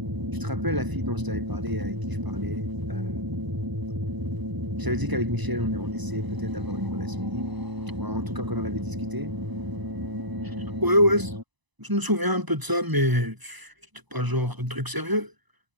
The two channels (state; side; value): late; left; 1.0 ms